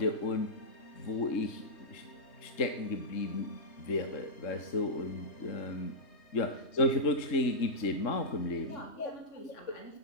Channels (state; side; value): late; right; 3.6 ms